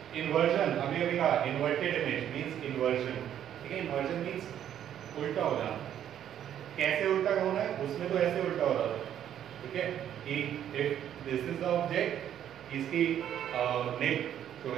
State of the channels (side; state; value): left; quieter; 10.3 dB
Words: inversion, अभी कहा inverted image means inversion. ठीक है, inversion means उल्टा हो जाना. कैसे उल्टा होना है? उसमें तो ऐसे उल्टा हो रहा था. ठीक है, कि if this is the object, इसकी नेक जो